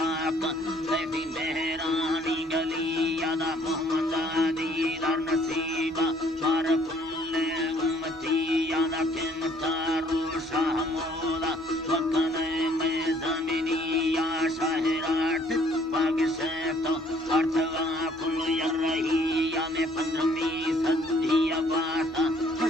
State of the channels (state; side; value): normal; both; correlation 0.61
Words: तेरी मेहरानी गली यादा मोहम्मद दीदार नसीबा मार कुल्ले उम्मती यादा किमता रूशा मोदा वकने में जमीनी या शाहराट पाग से तो अर्थवा कुल यरही या में 15वीं सदी अबाता